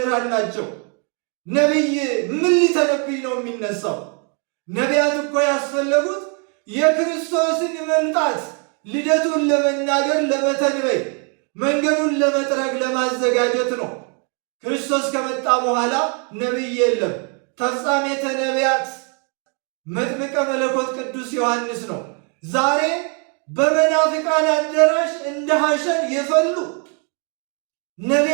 ናቸው። ነቢይ ምን ሊተነብይ ነው የሚነሳው? ነቢያት እኮ ያስፈለጉት የክርስቶስን መምጣት ልደቱን ለመናገር ለመተንበይ፣ መንገዱን ለመጥረግ ለማዘጋጀት ነው። ክርስቶስ ከመጣ በኋላ ነቢይ የለም። ተፍጻሜተ ነቢያት መጥምቀ መለኮት ቅዱስ ዮሐንስ ነው። ዛሬ በመናፍቃን አዳራሽ እንደ ሐሸን የፈሉ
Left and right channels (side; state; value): left; quieter; 37.7 dB